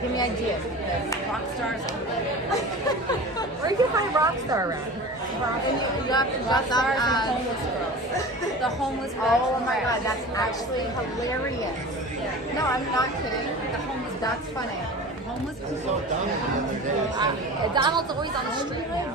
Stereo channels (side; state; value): both; normal; correlation 0.35